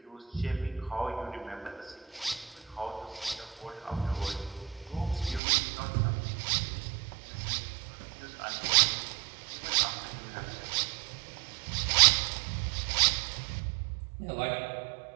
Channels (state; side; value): drops out; left; at 5.4 s